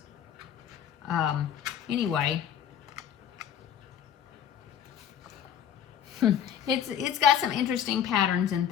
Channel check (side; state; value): right; quieter; 9.3 dB